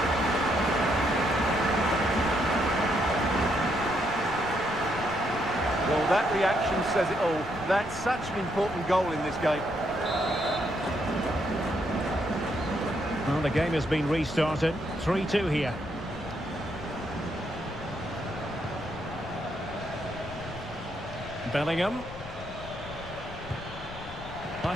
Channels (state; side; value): noise; left; rumble, 14 dB below the sound